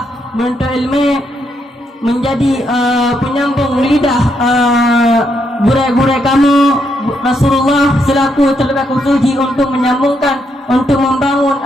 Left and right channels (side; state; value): both; normal; correlation 0.78